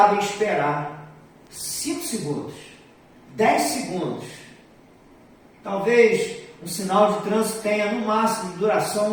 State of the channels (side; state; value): both; identical; correlation 1.00